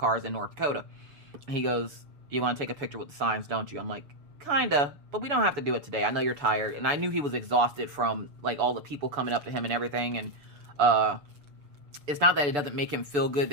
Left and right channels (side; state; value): left; late; 6.9 ms